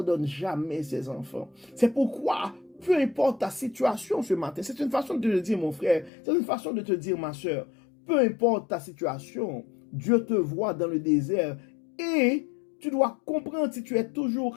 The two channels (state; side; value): drops out; right; at 6.1 s